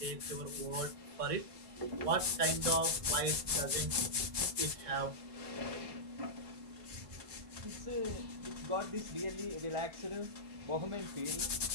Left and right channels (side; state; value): left; late; 1.6 ms